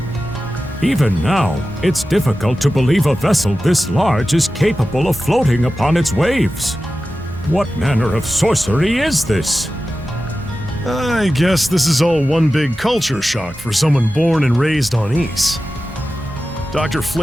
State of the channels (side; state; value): both; normal; correlation 0.94